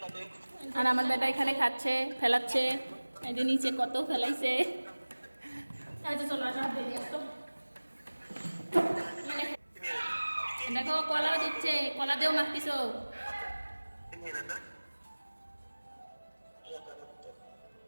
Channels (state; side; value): inverted; both; correlation -1.00